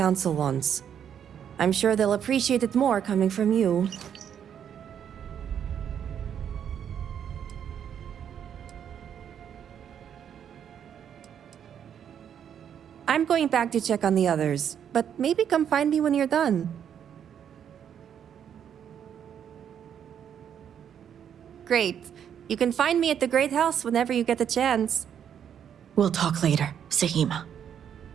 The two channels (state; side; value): quieter; left; 8.7 dB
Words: wants. I'm sure they'll appreciate it more coming from you. I'm going back to check on the others, but maybe come find me when you're done. Great. You can find me at the Great House whenever you get the chance. We'll talk later, Sahima.